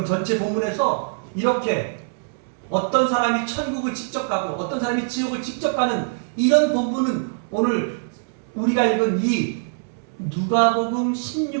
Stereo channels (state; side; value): silent; left; digital silence